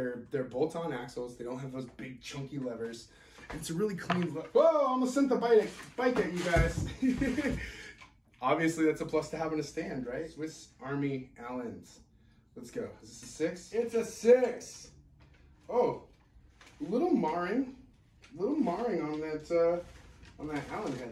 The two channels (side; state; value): both; identical; correlation 1.00